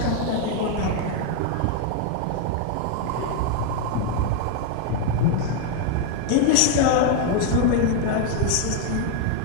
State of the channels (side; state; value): both; different; correlation 0.00